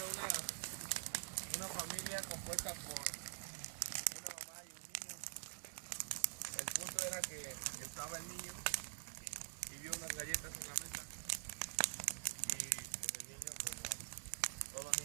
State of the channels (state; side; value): silent; left; digital silence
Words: una familia compuesta por una mamá y un niño. El punto era que estaba el niño y vio unas galletas en la mesa. Y pues el niño, como todos los